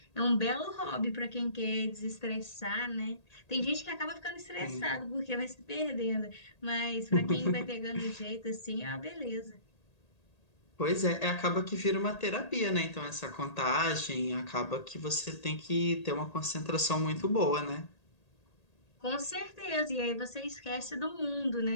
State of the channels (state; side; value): late; right; 1.8 ms